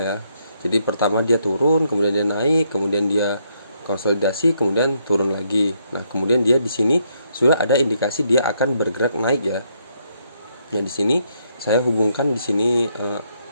ya. Jadi pertama dia turun, kemudian dia naik, kemudian dia konsolidasi, kemudian turun lagi. Nah, kemudian dia di sini sudah ada indikasi dia akan bergerak naik ya. Nah, di sini saya hubungkan di sini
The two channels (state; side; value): inverted; both; correlation -0.75